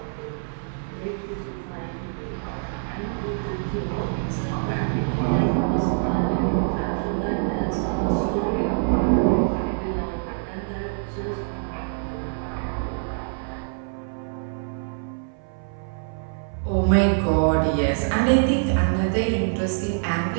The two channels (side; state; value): left; silent; 57 dB below the other